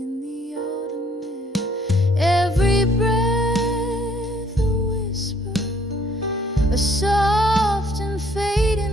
the autumn air. Every breath a whisper, a soft and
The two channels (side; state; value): both; normal; correlation 0.62